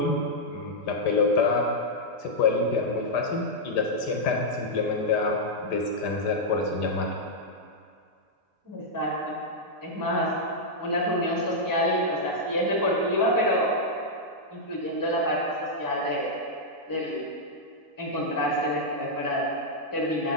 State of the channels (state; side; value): normal; both; correlation -0.06